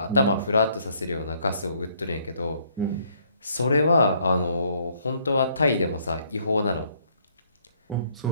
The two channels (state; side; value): inverted; both; correlation -0.66